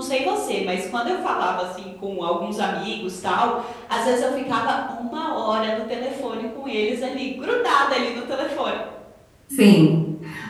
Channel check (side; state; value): both; identical; correlation 1.00